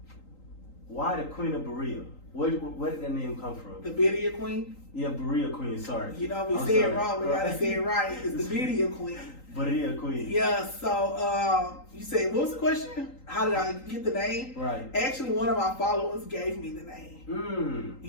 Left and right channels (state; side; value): late; right; 3.8 ms